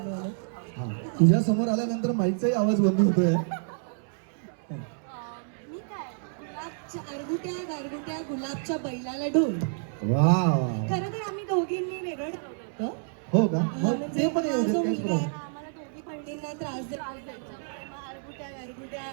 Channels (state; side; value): silent; left; 59 dB below the other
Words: हा तुझ्या समोर आल्यानंतर माईकचाही आवाज बंद होतोय. मी काय आरगुट्या गारगुट्या गुलाबच्या बैलाला ढोल. वा वा. खरं तर आम्ही दोघींनी वेगळं ठरवलं. हो का? मग म्हणजे ते पण हा येऊ जो दे, काहीच मुलगा आहे, प्रॉब्लेम. आम्हाला दोघी बहिणींना त्रास द्यायचा. आरगुट्या गारगुट्या